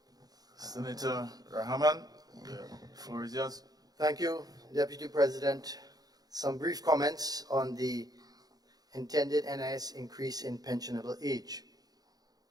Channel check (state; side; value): late; left; 0.19 ms